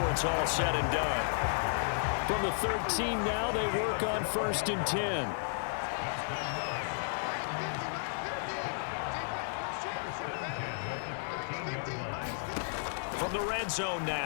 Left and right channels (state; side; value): silent; right; 56 dB below the other